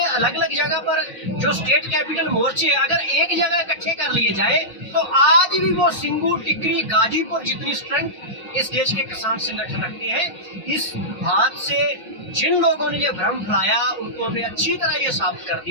अलग अलग जगह पर जो स्टेट कैपिटल मोर्चे अगर एक जगह इकट्ठे कर लिए जाए तो आज भी वो सिंघू, टिकरी, गाजीपुर जितनी स्ट्रेंथ इस देश के किसान संगठन रखते हैं। इस बात से जिन लोगों ने ये भ्रम फैलाया उनको हमने अच्छी तरह ये साबित कर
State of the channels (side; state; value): both; normal; correlation -0.15